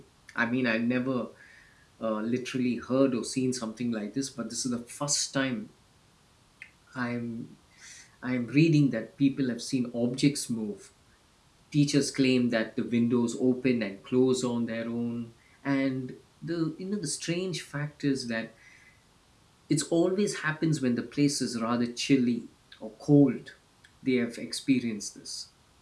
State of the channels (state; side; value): identical; both; correlation 1.00